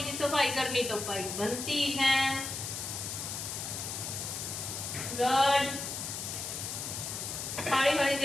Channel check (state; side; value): noise; left; hiss, 5 dB below the sound